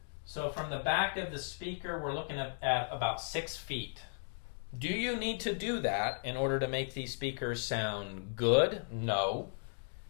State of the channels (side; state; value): right; silent; digital silence